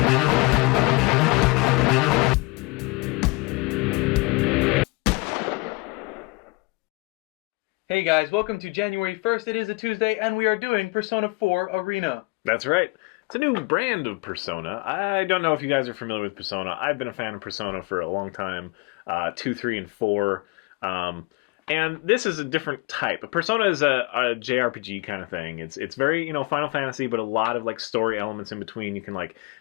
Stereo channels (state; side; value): quieter; right; 25.7 dB